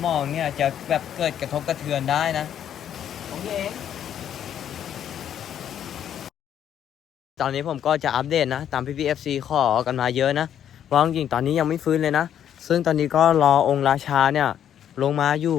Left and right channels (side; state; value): right; quieter; 9.8 dB